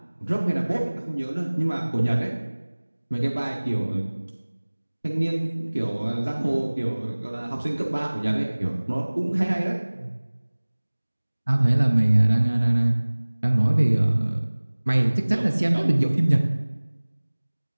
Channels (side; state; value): both; inverted; correlation -1.00